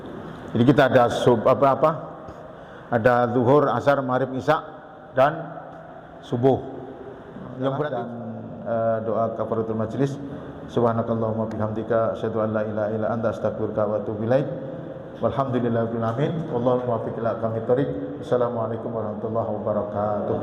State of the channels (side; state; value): both; identical; correlation 1.00